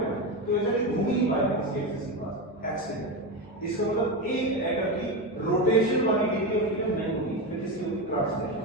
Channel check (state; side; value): normal; both; correlation 0.16